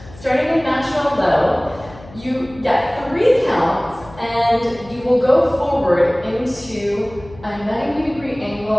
starting in natural low, you get 3 counts and you will go forward into a 90-degree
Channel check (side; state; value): left; noise; hum, 20 dB below the sound